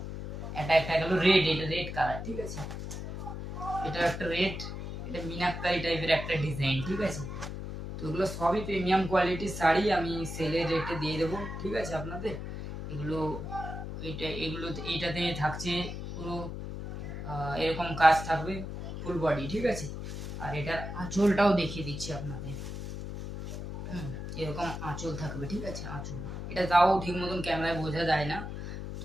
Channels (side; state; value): left; noise; hum, 7 dB below the sound